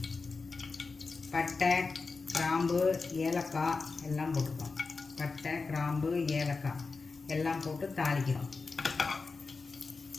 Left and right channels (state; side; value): quieter; right; 4.3 dB